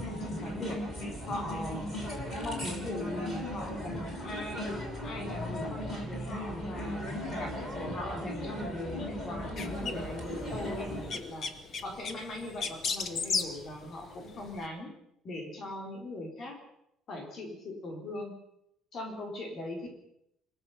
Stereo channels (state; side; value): normal; both; correlation 0.64